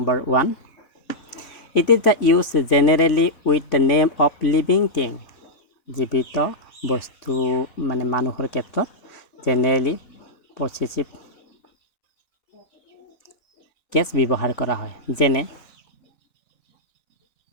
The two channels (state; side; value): late; right; 3.5 ms